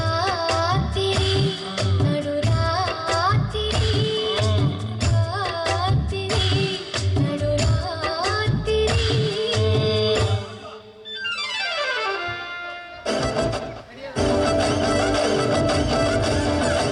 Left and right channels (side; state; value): both; identical; correlation 1.00